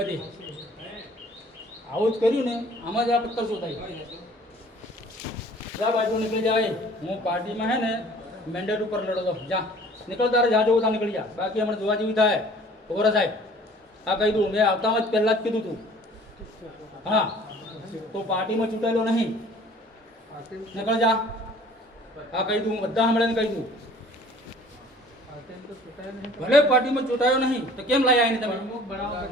આવું જ કર્યું ને, આમાં જ આ પત્તર શોધાય. જા બાજુ નીકળી જાય. હું પાર્ટીમાં હે ને મેન્ડેટ ઉપર લડો. જા નીકળ, તારે જા જવું તા નીકળી જા. બાકી હમણાં જોવા જેવી થાય. ખબર સાહેબ, આ કહી દઉં, મેં આવતામાં જ પહેલાં જ કીધું તું. હા, તો પાર્ટીમાં ચૂંટાયેલો નહીં. નીકળ જા. આ કહી દઉં, બધા હમણાં કહી દઉં. ભલે પાર્ટીમાં ચૂંટાયો નહીં તો કેમ લાયા એને તમે?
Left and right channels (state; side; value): normal; both; correlation 0.51